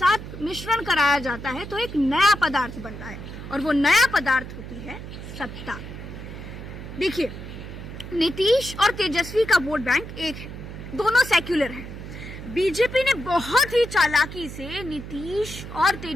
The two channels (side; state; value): right; noise; hum, 11 dB below the sound